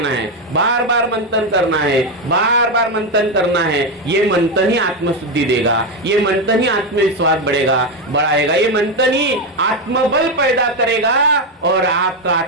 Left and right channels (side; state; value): both; normal; correlation 0.09